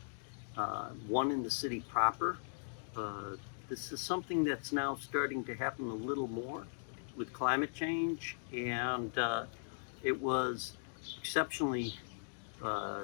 one in the city proper. This is something that's now starting to happen a little more with climate change, and it was exceptionally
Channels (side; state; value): right; silent; digital silence